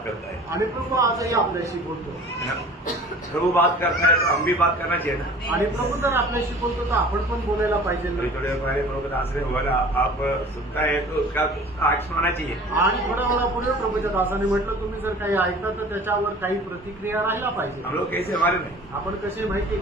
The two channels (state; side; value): normal; both; correlation 0.44